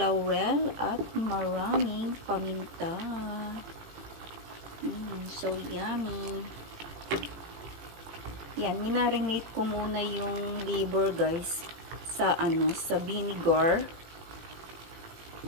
at maraming paminta. So yummy. Yan, minarinate ko muna yung liver guys sa vinegar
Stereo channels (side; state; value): left; late; 18 ms